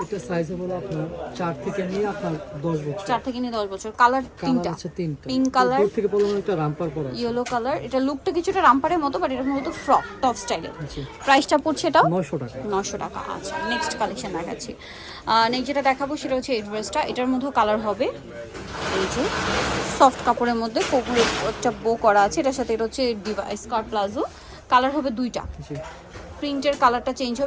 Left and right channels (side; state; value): both; identical; correlation 1.00